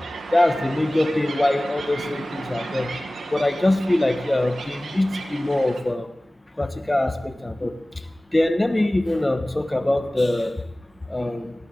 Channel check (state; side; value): normal; both; correlation 0.98